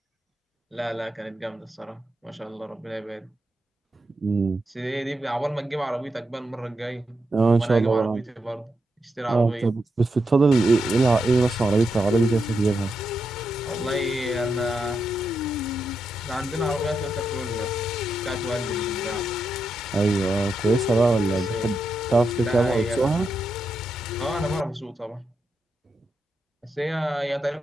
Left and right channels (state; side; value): normal; both; correlation 0.85